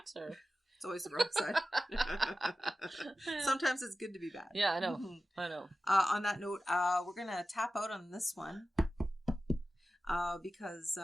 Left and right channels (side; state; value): both; normal; correlation 0.94